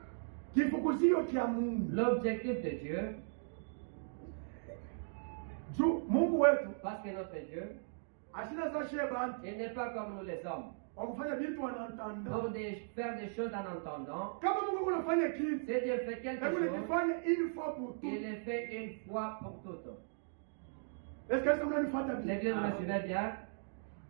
Kifukuzio cha Mungu. L'objectif de Dieu, Juu Mungu wetu parce que notre Dieu, ashina za sheba il n'est pas comme nous les hommes. wakufanya vitu wanaantanda. Pour faire des choses en entendant, Kama Mungu unafanya kitu, si Dieu fait quelque hebu chose, nikifanya une fois pour tout. il le fait une fois pour toutes. Est-ce que ça mnanifuata bien? L'église me suivait bien.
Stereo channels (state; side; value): silent; left; digital silence